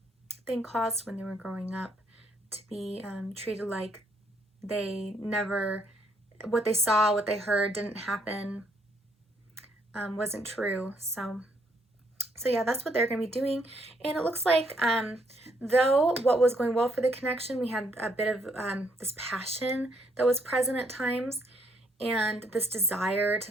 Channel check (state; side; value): normal; both; correlation 0.71